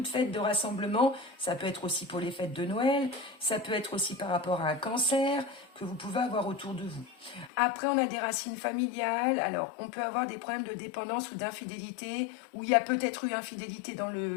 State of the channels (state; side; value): drops out; right; at 7.5 s